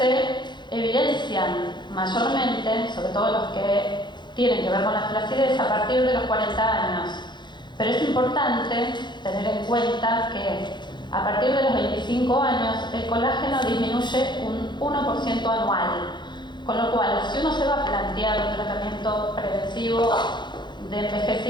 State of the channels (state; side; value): late; right; 0.22 ms